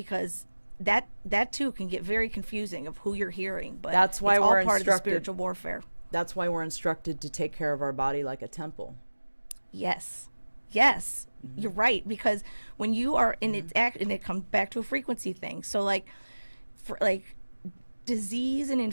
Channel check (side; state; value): both; inverted; correlation -1.00